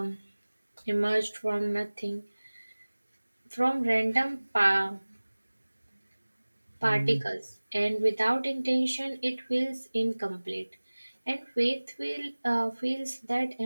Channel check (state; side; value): inverted; both; correlation -1.00